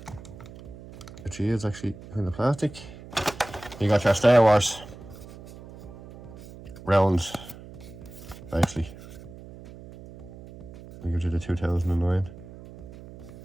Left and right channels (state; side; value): noise; right; hum, 16 dB below the sound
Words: which he is actually kind of plastic. You got your Star Wars rounds, actually. We give you the 2009